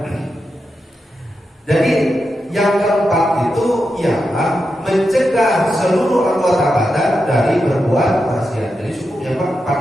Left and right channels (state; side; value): normal; both; correlation 0.88